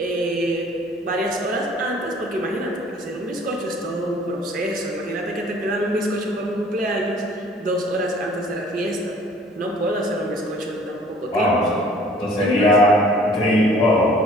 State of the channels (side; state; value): both; normal; correlation 0.53